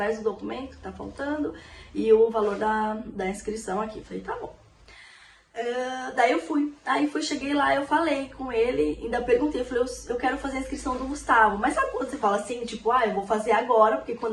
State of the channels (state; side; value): identical; both; correlation 1.00